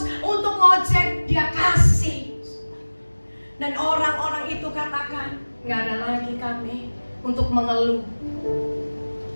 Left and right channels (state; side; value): inverted; both; correlation -1.00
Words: untuk ngojek, dia kasih. Dan orang-orang itu katakan, nggak ada lagi kami untuk mengeluh.